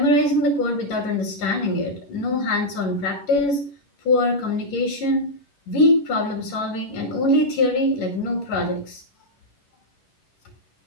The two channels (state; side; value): late; right; 11 ms